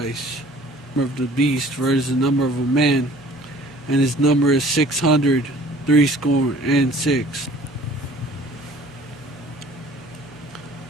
Of the beast versus the number of a man, and his number is 636.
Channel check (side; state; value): both; normal; correlation 0.51